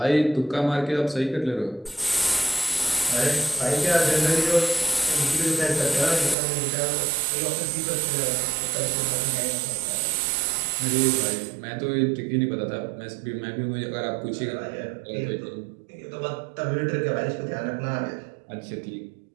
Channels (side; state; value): left; drops out; at 6.4 s